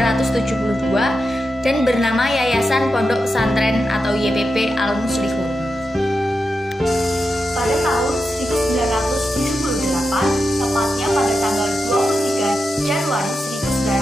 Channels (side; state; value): both; normal; correlation 0.88